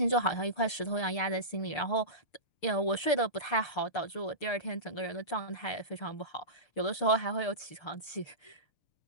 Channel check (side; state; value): right; late; 6.7 ms